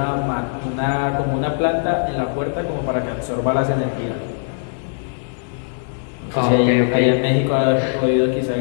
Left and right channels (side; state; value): right; silent; digital silence